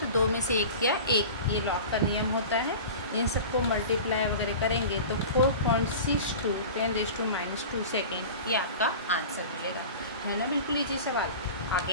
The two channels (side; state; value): both; inverted; correlation -0.35